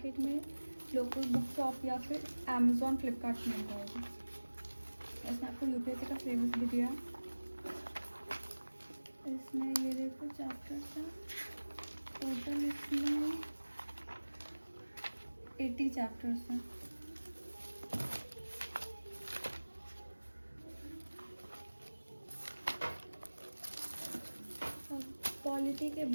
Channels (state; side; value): inverted; both; correlation -1.00